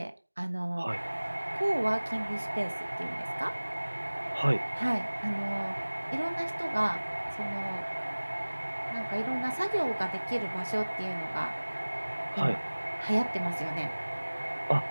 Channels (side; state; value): both; inverted; correlation -1.00